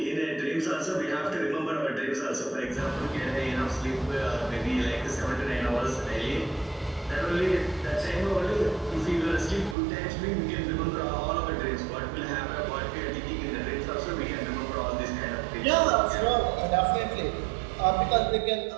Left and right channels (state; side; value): drops out; left; at 9.8 s